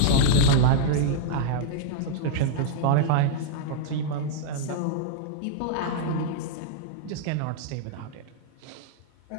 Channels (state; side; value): different; both; correlation -0.01